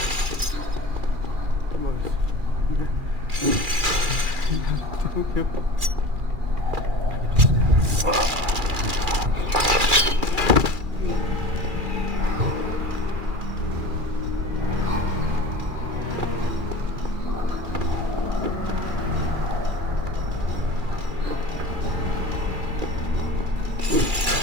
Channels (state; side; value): late; left; 2.4 ms